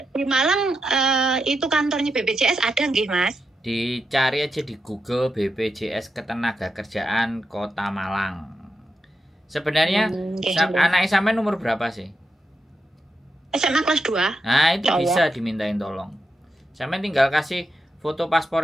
di Malang itu kantornya BPJS ada nggih Mas? Dicari aja di Google BPJS Ketenagakerjaan Kota Malang. Sebenarnya anak sampean umur berapa sih? SMA kelas 2. Nah, itu bisa dimintain tolong. Sampean tinggal kasih foto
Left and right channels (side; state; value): both; normal; correlation 0.86